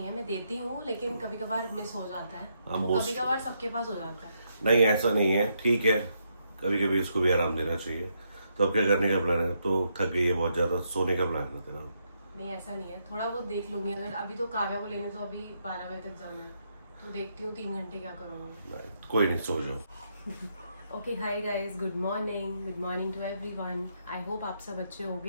है, मैं देती हूँ लेकिन कभी कभार मिस हो जाता है। कभी कभार सबके पास हो जाता है। नहीं, ऐसा नहीं है, ठीक है। कभी कभी इसको भी आराम देना चाहिए। तो अब क्या करने का प्लान है? तो थक गई है बहुत ज्यादा, सोने का प्लान है तेरा? नहीं ऐसा नहीं है, थोड़ा बहुत देख लूंगी। अगर अभी तो काव्या को लेने तो अभी 12 बजे तक जाना है, तो देखती हूँ 3 घंटे क्या करूँगी। कोई नहीं, सो जाओ। Okay hi guys, good morning to everyone. I hope आप सब अच्छे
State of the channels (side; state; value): both; inverted; correlation -0.78